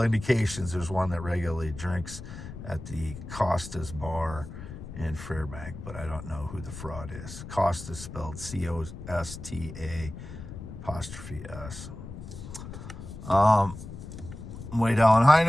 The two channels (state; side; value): noise; left; rumble, 11 dB below the sound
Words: there's one that regularly drinks at the Costa's bar in Fairbank, but I don't know who the fraud is. Costa spelled COSTA''S. Wade Allen